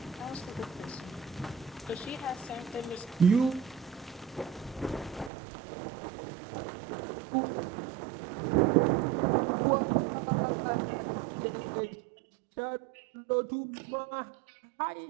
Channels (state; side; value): drops out; left; at 5.3 s